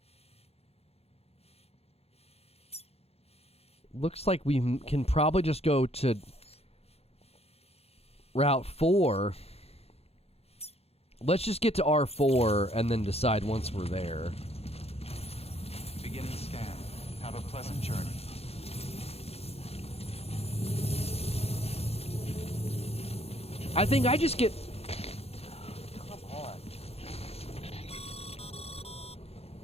Looks like we can probably just go to Route 4. Let's just get to R4 and then decide once we're there. Beginning scan. Have a pleasant journey. I think I just get... Come on.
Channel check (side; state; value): right; late; 0.29 ms